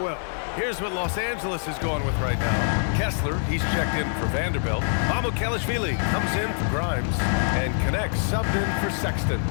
well. Here's what Los Angeles is going with right now. Kessler, he's checked in for Vanderbilt. Mamukelashvili comes in for Grimes and connects, subbed in for Sexton.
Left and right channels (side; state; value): right; silent; digital silence